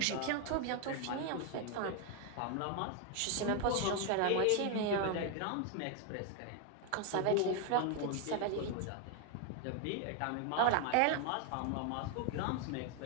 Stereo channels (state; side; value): different; both; correlation 0.01